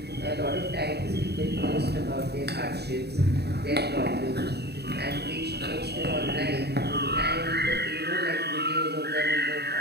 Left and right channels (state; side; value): late; left; 0.48 ms